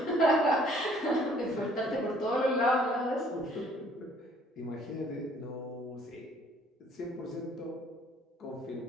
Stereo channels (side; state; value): both; normal; correlation 0.59